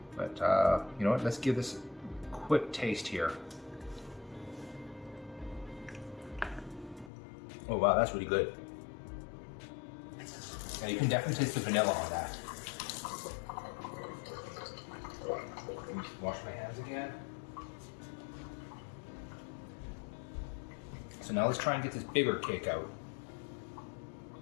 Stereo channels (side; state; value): right; drops out; at 7.1 s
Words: But you know what, let's give this a quick taste here. Oh wow, that's really good. Yeah, you can definitely taste the vanilla on that. Let me wash my hands again. So now let's try and get this bigger cake out.